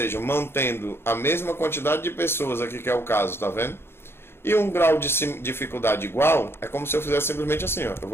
mantendo a mesma quantidade de pessoas aqui, que é o caso, tá vendo? E um grau de dificuldade igual, é como se eu fizesse simplesmente assim, ó. Eu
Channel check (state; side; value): late; right; 0.11 ms